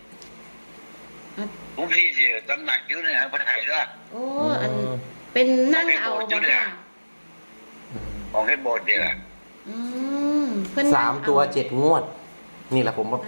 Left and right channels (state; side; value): inverted; both; correlation -1.00